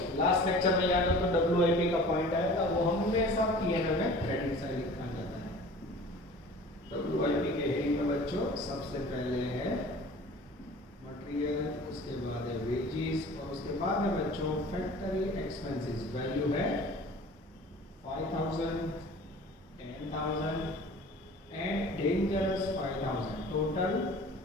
लास्ट लेक्चर में याद हो तो WIP का पॉइंट आया था, वो हमेशा P&L में क्रेडिट साइड लिखा जाता है। WIP के हेडिंग में बच्चों सबसे पहले है मटेरियल, उसके बाद है वेजेस और उसके बाद है बच्चों फैक्ट्री एक्सपेंसेस। वैल्यू है 5,000, 10,000 एंड डेंजरस 5,000, टोटल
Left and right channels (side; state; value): both; normal; correlation 0.44